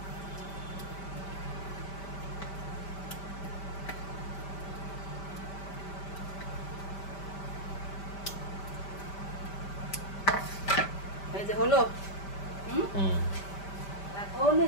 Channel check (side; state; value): right; late; 5.1 ms